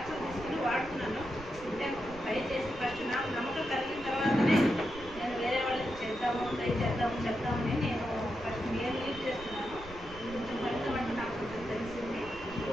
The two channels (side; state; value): right; noise; rumble, 16 dB below the sound